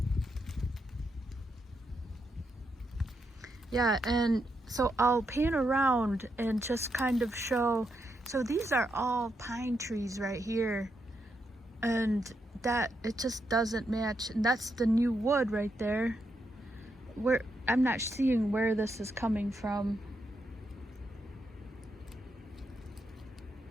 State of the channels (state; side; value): normal; both; correlation 0.82